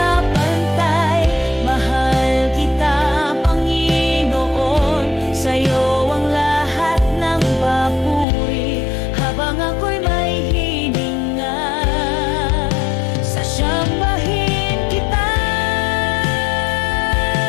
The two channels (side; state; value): right; drops out; at 8.2 s